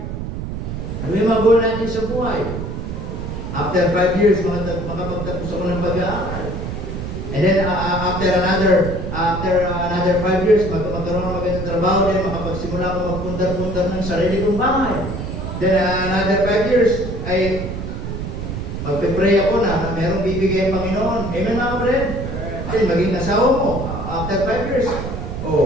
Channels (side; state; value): right; noise; rumble, 6 dB below the sound